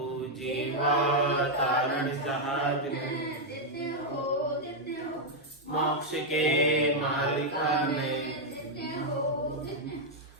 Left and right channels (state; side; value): normal; both; correlation -0.01